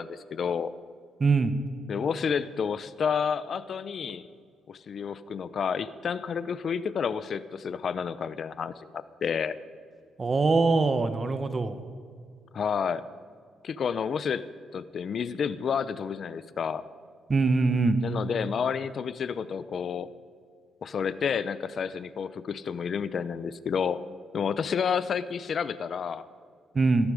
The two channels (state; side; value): normal; both; correlation 0.80